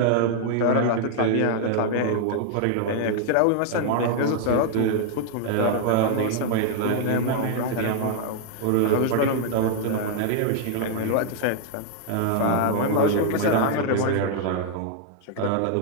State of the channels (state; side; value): different; both; correlation 0.00